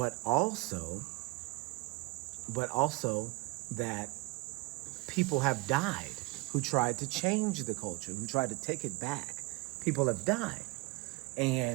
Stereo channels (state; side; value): quieter; left; 23.4 dB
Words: also that people have died who tried to change the culture, who tried to take it back. People have died.